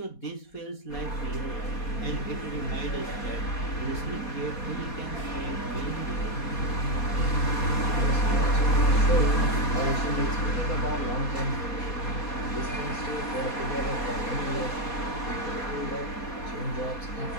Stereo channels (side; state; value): right; late; 4.2 ms